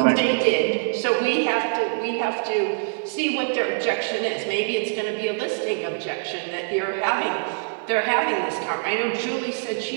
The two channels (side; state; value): left; silent; digital silence